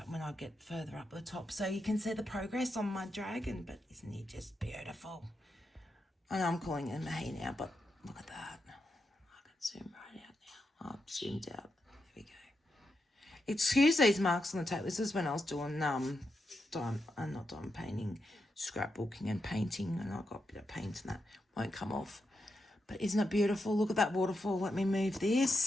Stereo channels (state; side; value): normal; both; correlation 0.85